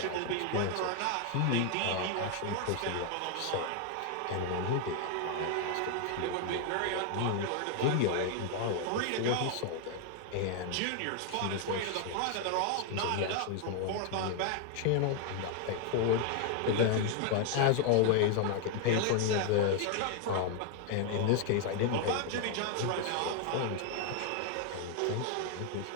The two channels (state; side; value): different; both; correlation 0.00